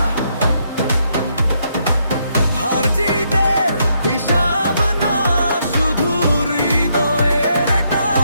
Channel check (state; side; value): inverted; both; correlation -0.76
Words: হার জিতের হিসাব না, শুধু হৃদয়ের